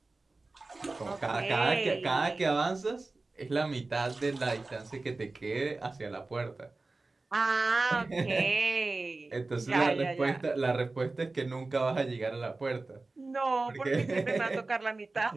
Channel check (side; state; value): left; quieter; 3.4 dB